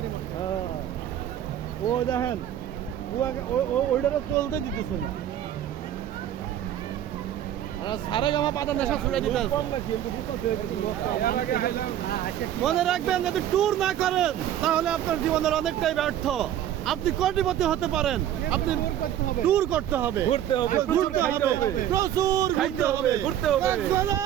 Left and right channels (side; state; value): left; quieter; 11.1 dB